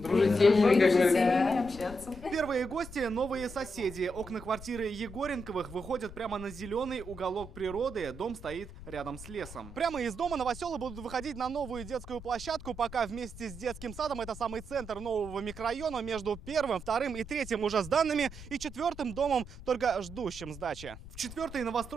дружить, с семьями, как говорится. Общаться. Первые гости – новые соседи. Окна квартиры Егоренковых выходят прямо на зеленый уголок природы. Дом стоит рядом с лесом. Прямо из дома новоселы будут выходить на новую детскую площадку. Пока вместе с детским садом это самый центр нового микрорайона. Между первым, вторым и третьим уже сданными и четвертым домом, только ждущим сдачи. В четвертой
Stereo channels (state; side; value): noise; left; rumble, 14 dB below the sound